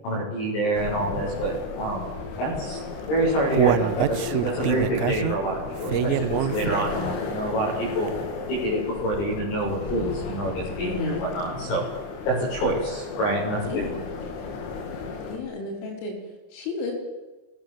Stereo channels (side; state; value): right; late; 29 ms